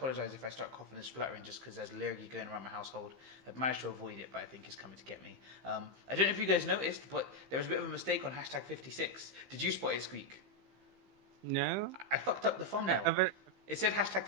if I start coughing and spluttering just because there's lurgy going around my household. I've managed to avoid it, but I think it's coming to get me. I don't know if you guys noticed, but there was a bit of a mistake on hashtag 56. Did you spot it, Squeak? No. I fucked up the thumbnail. It said hashtag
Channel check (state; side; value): late; left; 15 ms